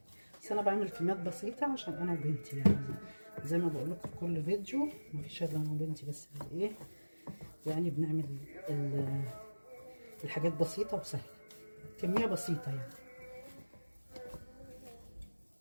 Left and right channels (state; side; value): inverted; both; correlation -1.00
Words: بس انا بعمل كميات بسيطة عشان انا وبنتي، يعني زي ما بقول لكم في كل فيديو مفيش الا انا وبنتي بس اللي ايه يعني بنعمل الحاجات بسيطة وسهلة، كمية بسيطة يعني.